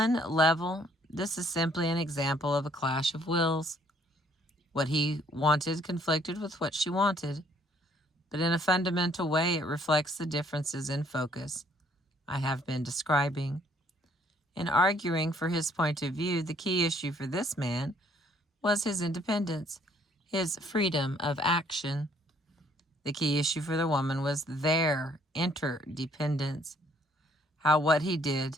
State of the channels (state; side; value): normal; both; correlation 0.64